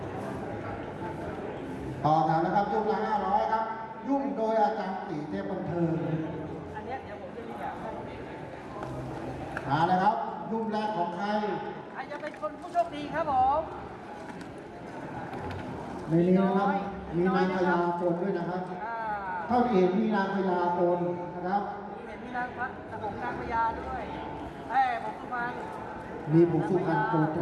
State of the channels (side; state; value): both; identical; correlation 1.00